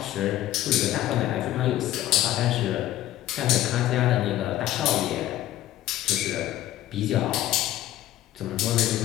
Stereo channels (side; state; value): right; quieter; 13.8 dB